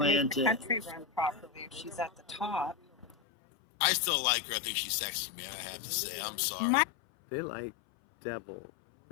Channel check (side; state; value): right; drops out; at 3.2 s